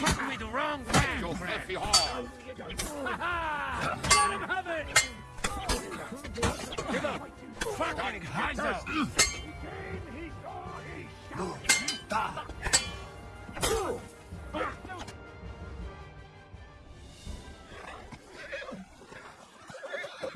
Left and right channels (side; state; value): both; identical; correlation 1.00